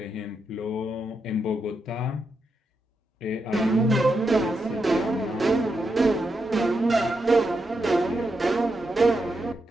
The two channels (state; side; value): normal; both; correlation 0.84